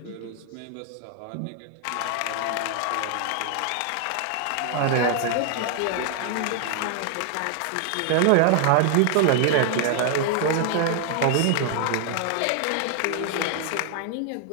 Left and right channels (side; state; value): both; different; correlation 0.00